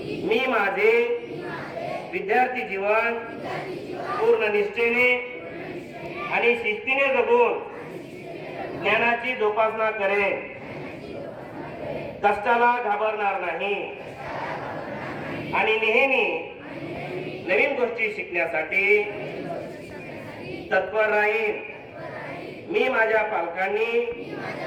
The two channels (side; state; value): both; identical; correlation 1.00